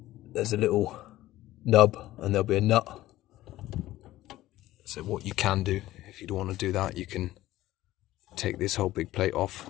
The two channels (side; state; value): right; quieter; 15.6 dB